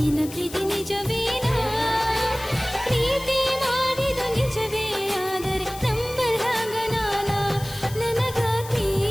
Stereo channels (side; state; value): left; noise; hiss, 15 dB below the sound